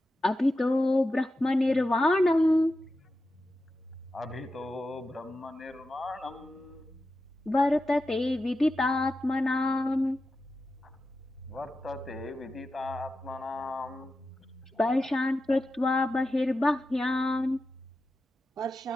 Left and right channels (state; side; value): normal; both; correlation 0.91